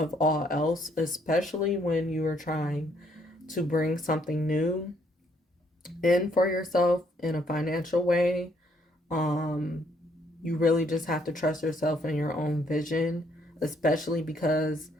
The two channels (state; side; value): normal; both; correlation 0.69